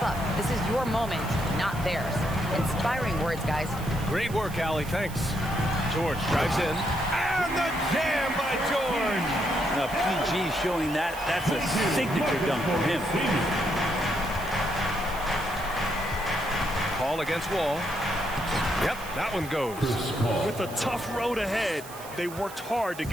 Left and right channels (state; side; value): noise; right; hiss, 16 dB below the sound